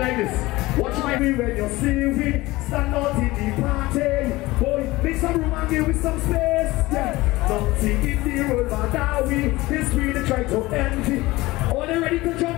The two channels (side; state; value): right; quieter; 19.8 dB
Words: this. Watch my way when you see me. Stand out in the party. Boy, make some room and give me some space. Yeah. Nothing in the world but that we. This we they try to envy. Are they ready to